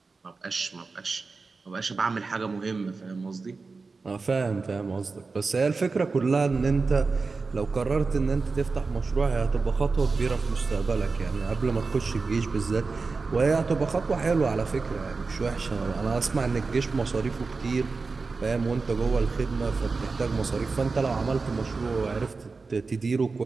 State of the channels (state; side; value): quieter; left; 4.2 dB